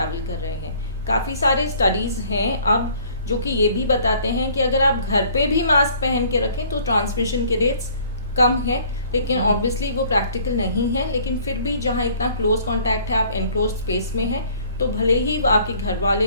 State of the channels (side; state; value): both; inverted; correlation -0.56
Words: कर रहे हैं। काफ़ी सारे स्टडीज़ हैं अब जो कि ये भी बताते हैं कि अगर आप घर पे भी मास्क पहन के रखें तो ट्रांसमिशन के रेट्स कम है। लेकिन ऑब्वियसली वो प्रैक्टिकल नहीं है, लेकिन फिर भी जहाँ इतना क्लोज कॉन्टैक्ट है, आप एनक्लोज स्पेस में हैं, तो भले ही आपके घर